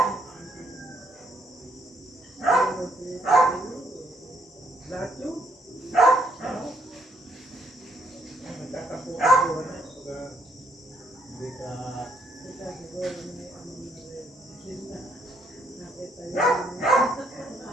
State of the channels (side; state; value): both; normal; correlation 0.70